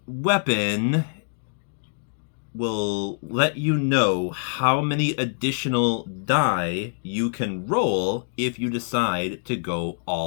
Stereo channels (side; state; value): right; silent; digital silence